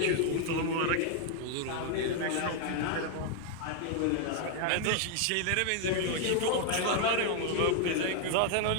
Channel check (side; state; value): both; different; correlation 0.00